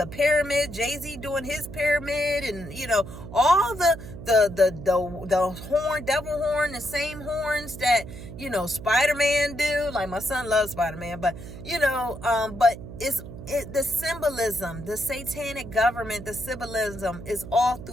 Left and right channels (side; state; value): right; noise; hum, 12 dB below the sound